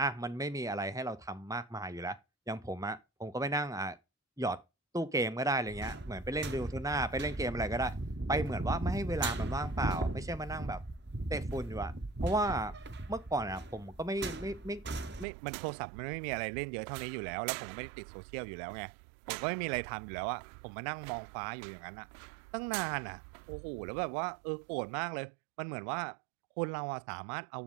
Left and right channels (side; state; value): left; drops out; at 15.2 s